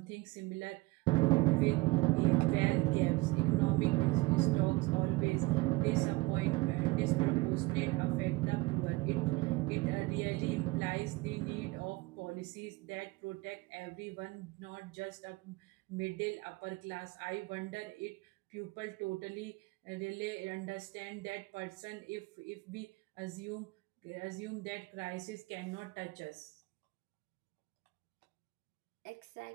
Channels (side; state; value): left; quieter; 22.6 dB